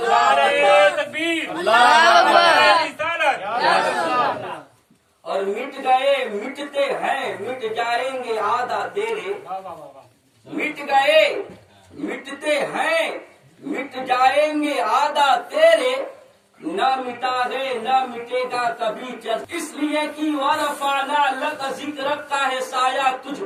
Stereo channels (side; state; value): both; identical; correlation 1.00